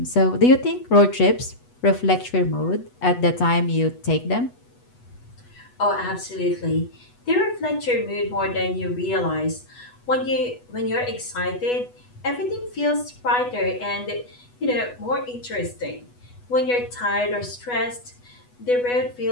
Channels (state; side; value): late; right; 8.2 ms